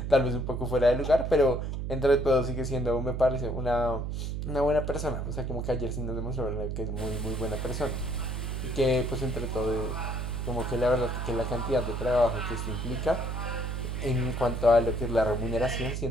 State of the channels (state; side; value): noise; right; hum, 3 dB below the sound